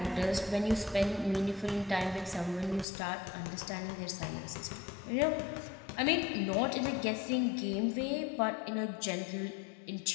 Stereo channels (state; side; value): drops out; right; at 2.9 s